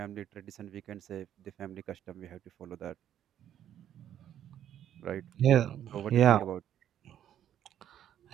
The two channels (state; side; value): quieter; left; 10.6 dB